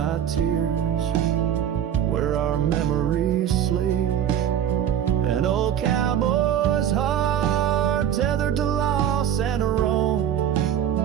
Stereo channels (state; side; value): quieter; left; 10.0 dB